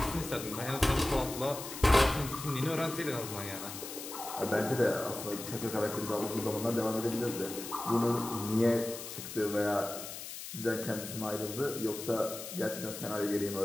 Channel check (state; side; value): noise; left; hiss, 9 dB below the sound